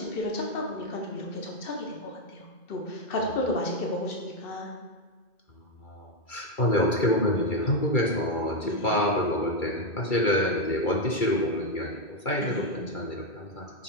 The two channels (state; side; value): late; right; 2.3 ms